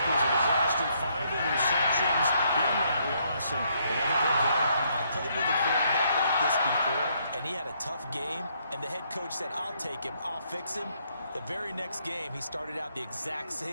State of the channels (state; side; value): inverted; both; correlation -0.71